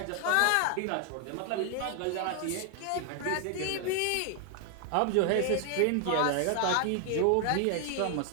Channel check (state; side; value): different; both; correlation 0.00